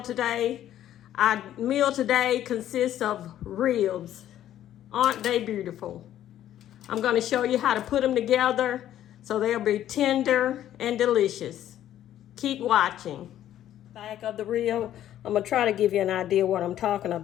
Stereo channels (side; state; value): right; quieter; 11.9 dB